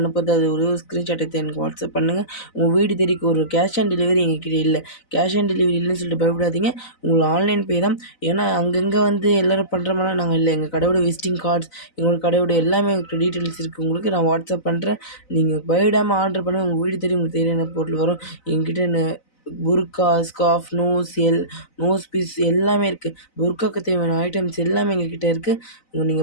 அது ஒரு ஸ்க்ரீன்ஷாட் எடுத்து எனக்கு வாட்ஸ்அப் பண்ணுங்கள். உங்கள் வீடு தேடிக்கு ஒரு கேஷ் ஆன் டெலிவரி எங்ககிட்ட இல்லை. கேஷ் ஆன் டெலிவரி இல்லைன்னு சொல்லிட்டு பயப்படாதீங்க. உங்களுக்கு ஆன்லைன் பே தான். ஏன்னா அங்கங்கே வந்து எல்லோரும் பண்ணுற மாதிரிலாம் நாங்கள் இல்லை. எங்கள் கடையோட விசிட்டிங் கார்ட்ஸ், எங்களோட கடையோட எல்லாமே எங்களுக்கு டீட்டெயில்ஸ் இருக்குது. உங்களுக்கு நான் வாட்ஸ்அப் பண்ணுறேன். நீங்கள் பயப்படாமல் ஆர்டர் பண்ணுங்கள். உங்கள் வீடு தேடி உங்களுக்கு தேவையான பொருள் வரும். எங்ககிட்ட புர்கா, ஸ்கார்ஃப், நோஸ் பீஸ் எல்லாமே இருக்குது. புர்காவுக்கு தேவையான ஐட்டம்ஸ் எல்லாமே எங்ககிட்ட இருக்குது.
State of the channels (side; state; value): right; late; 4.0 ms